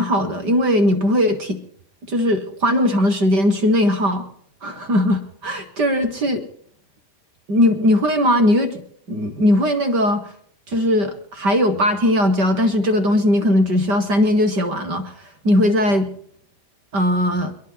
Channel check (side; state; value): left; late; 5.1 ms